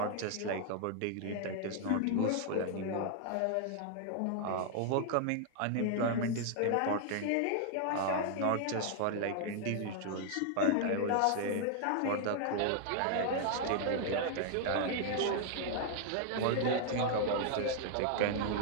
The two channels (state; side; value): different; both; correlation 0.00